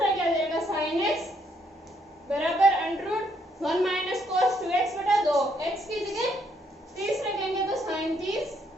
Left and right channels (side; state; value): both; normal; correlation 0.72